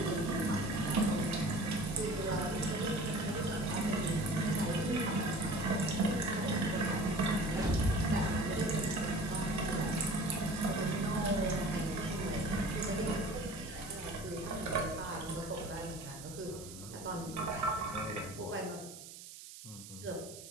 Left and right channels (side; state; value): right; noise; hiss, 14 dB below the sound